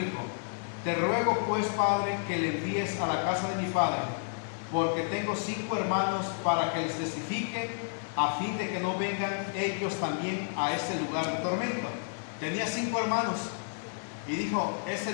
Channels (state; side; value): silent; right; digital silence